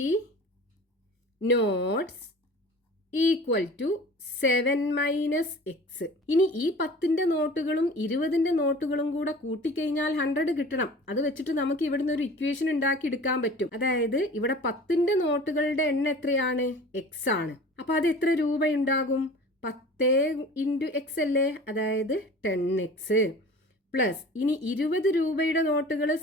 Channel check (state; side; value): normal; both; correlation 0.42